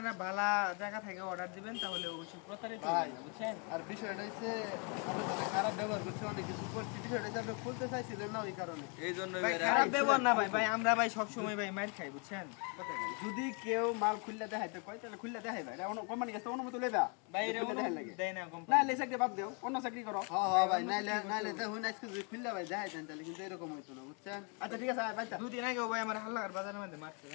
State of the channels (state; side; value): quieter; right; 36.0 dB